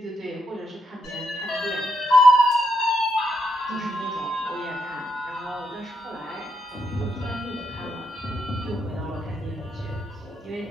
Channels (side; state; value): both; normal; correlation 0.79